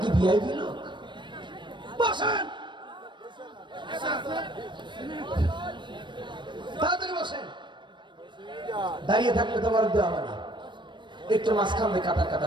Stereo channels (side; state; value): left; late; 0.22 ms